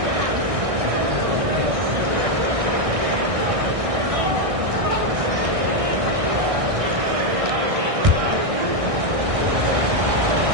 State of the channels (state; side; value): late; left; 1.6 ms